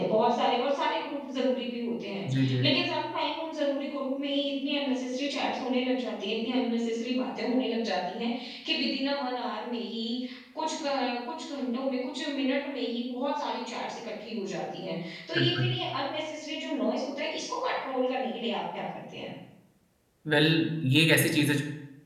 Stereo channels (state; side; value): identical; both; correlation 1.00